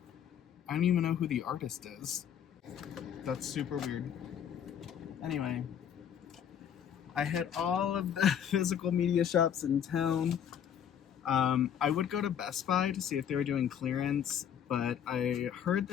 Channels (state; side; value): quieter; right; 8.9 dB